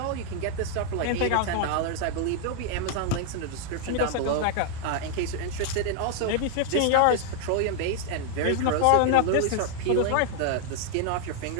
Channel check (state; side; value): different; both; correlation 0.00